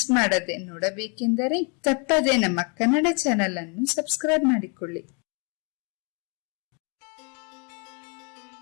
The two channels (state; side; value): quieter; right; 36.0 dB